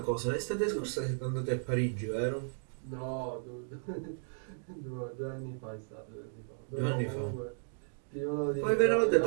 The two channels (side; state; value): left; silent; digital silence